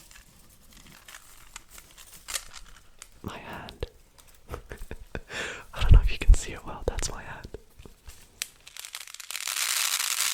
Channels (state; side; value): identical; both; correlation 1.00